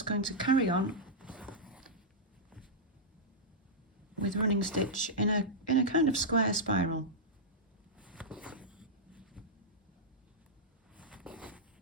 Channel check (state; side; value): normal; both; correlation -0.10